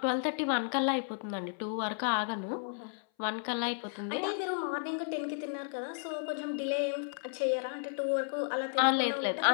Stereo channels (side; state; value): right; silent; 56 dB below the other